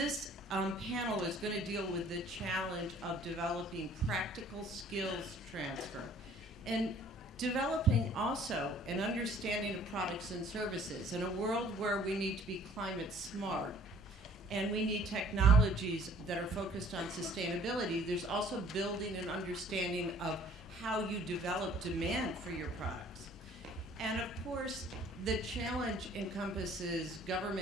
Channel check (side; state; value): both; normal; correlation 0.55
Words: panel is going to deal with the challenge of developing practical skills transfer and developing also an understanding of products and services in a world where we need to be climate smart and we need technologies that are focused on sustainability. There's also building an understanding of how you develop demand for your products. And of course, the challenge encompasses